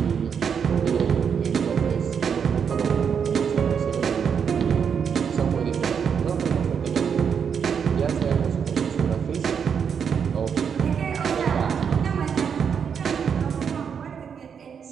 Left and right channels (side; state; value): left; quieter; 7.1 dB